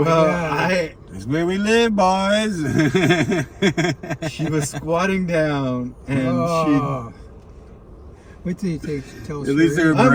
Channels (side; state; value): both; identical; correlation 1.00